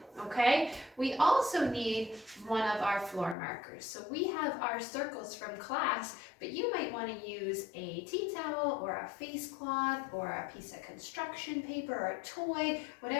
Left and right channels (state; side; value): drops out; right; at 3.4 s